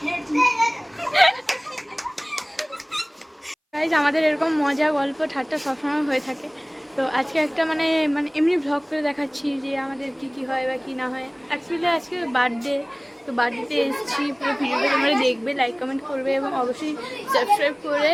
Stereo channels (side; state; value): both; identical; correlation 1.00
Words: hate you. Guys, আমাদের এরকম মজা গল্প ঠাট্টা সবসময় হয়ে থাকে। তো আজকে একটা মানে এমনি ভ্লগ করে দেখাচ্ছি যে আমাদের কি হয় বা কি না হয়। অ্যাকচুয়ালি আজকে বার্থডে, তো বার্থডেতে এসেছি। পুরো ভিডিওটা তোমরা দেখবে, লাইক কমেন্ট করবে এবং অবশ্যই সাবস্ক্রাইব করে